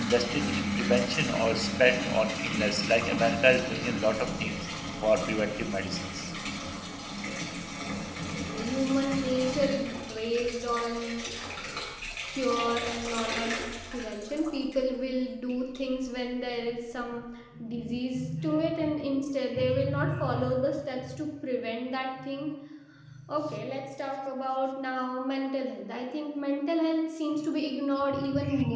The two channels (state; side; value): identical; both; correlation 1.00